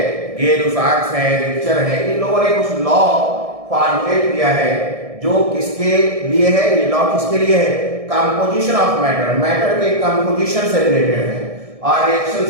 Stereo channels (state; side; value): late; left; 1.6 ms